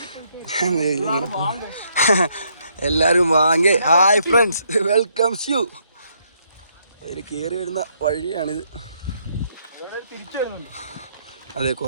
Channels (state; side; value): inverted; both; correlation -0.72